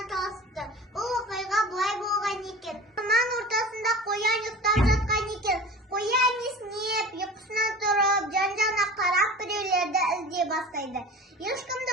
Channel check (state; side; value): normal; both; correlation 0.37